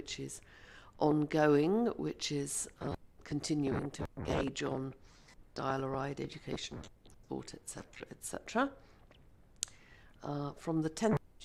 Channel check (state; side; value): identical; both; correlation 1.00